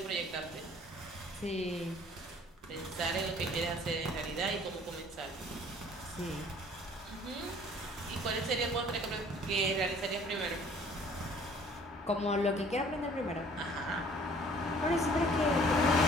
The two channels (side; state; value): both; normal; correlation 0.55